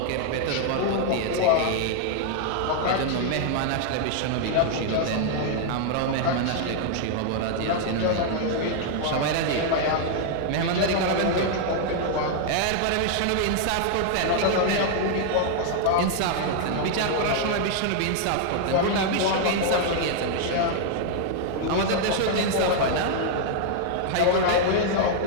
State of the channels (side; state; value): both; different; correlation 0.00